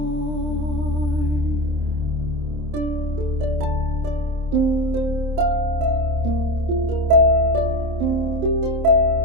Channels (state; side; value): late; left; 27 ms